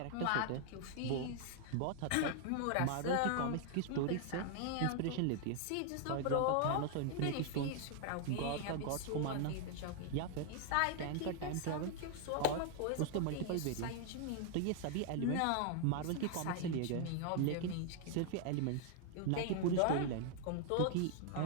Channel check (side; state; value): both; different; correlation 0.00